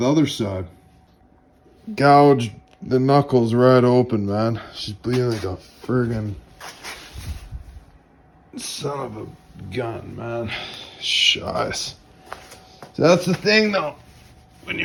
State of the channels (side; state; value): both; identical; correlation 1.00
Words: other side. Gouged the knuckles right open, man. She's bleeding like a friggin' son of a gun, man. Shice. So that's the thing, though. When